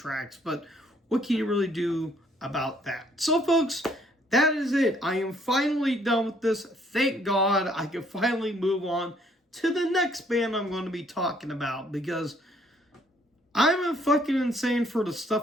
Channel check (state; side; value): normal; both; correlation 0.65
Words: But what can you really do about that? So, folks, that is it. I am finally done with this. Thank God I can finally move on to the next band I'm going to be talking about, because I'm fucking insane for the